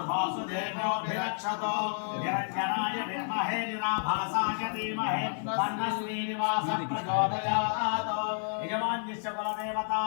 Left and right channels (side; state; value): right; silent; 57 dB below the other